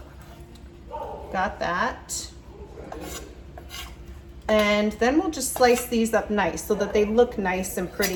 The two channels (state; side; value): identical; both; correlation 1.00